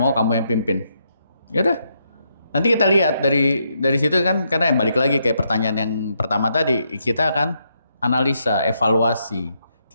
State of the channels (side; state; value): both; inverted; correlation -0.78